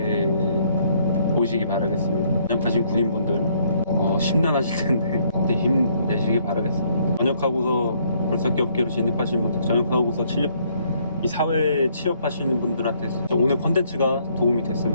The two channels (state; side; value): inverted; both; correlation -0.67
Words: 보시기 바라겠습니다. 전역하신 군인분들 심란하실 텐데 그때 힘내시기 바라겠습니다. 전역하고서 굴삭기 업계로 진입하신 분들, 전역하고서 이 사회에 취업하시는 분들한테 오늘 컨텐츠가 도움이